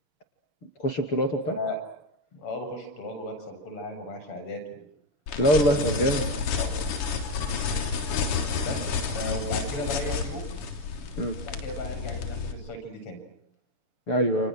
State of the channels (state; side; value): late; right; 7.1 ms